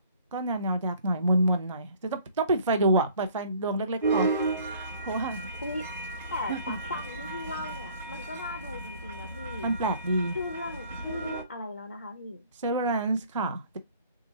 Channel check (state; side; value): inverted; both; correlation -0.54